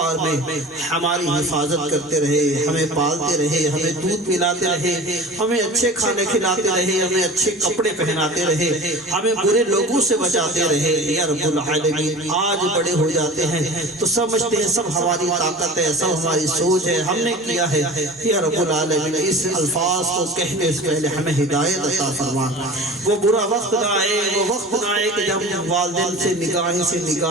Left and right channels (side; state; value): both; normal; correlation 0.37